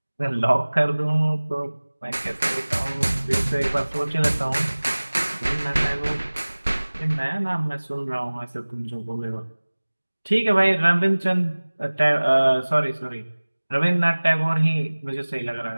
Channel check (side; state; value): both; inverted; correlation -1.00